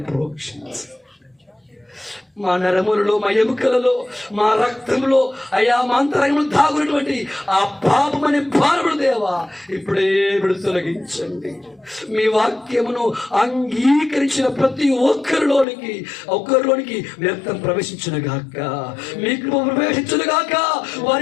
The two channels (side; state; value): right; drops out; at 15.7 s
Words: ప్రోక్షించు. మా నరములలో, మా ఎముకలలో, మా రక్తంలో, అయా మా అంతరంగంలో దాగున్నటువంటి ఆ పాపమనే భారముడు దేవా ఇప్పుడే తొలగించండి. మీ వాక్యమును అంగీకరించిన ప్రతి ఒక్కరిలోనికి వ్యర్థం ప్రవేశించును గాక, మీకు ప్రవేశించును గాక,